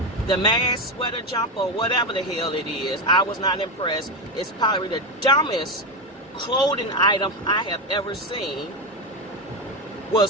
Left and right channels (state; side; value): normal; both; correlation 0.13